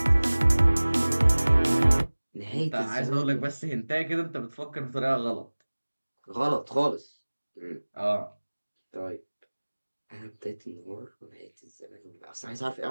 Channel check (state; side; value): inverted; both; correlation -1.00